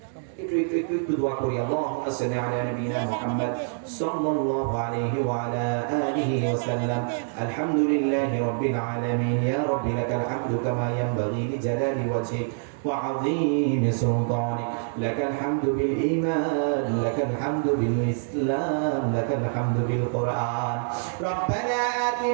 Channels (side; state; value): left; silent; 60 dB below the other